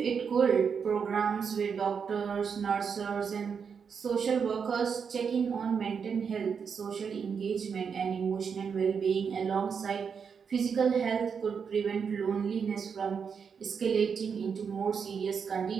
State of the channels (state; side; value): quieter; left; 6.4 dB